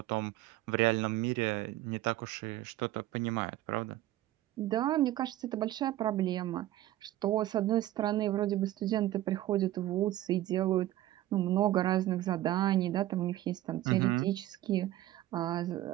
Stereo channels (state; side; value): quieter; left; 14.6 dB